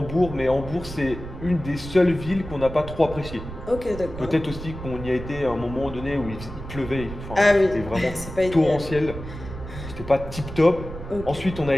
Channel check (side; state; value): right; noise; rumble, 11 dB below the sound